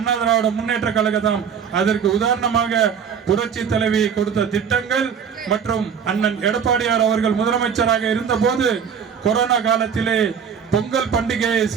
திராவிட முன்னேற்ற கழகம். அதற்கு உதாரணமாக புரட்சி தலைவி கொடுத்த திட்டங்கள் மற்றும் அண்ணன் எடப்பாடியார் அவர்கள் முதலமைச்சராக இருந்த போது கொரோனா காலத்திலே பொங்கல் பண்டிகையை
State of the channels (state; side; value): quieter; left; 7.3 dB